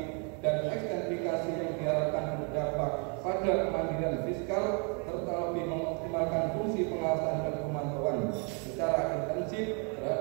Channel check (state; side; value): quieter; left; 36.8 dB